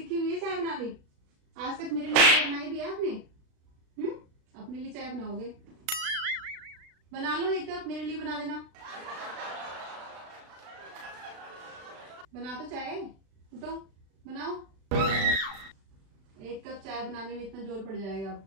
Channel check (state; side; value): late; left; 36 ms